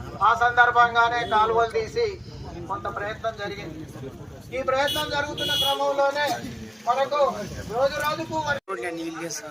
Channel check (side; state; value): both; identical; correlation 1.00